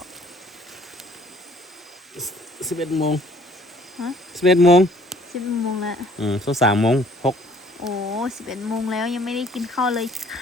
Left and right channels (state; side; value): normal; both; correlation 0.58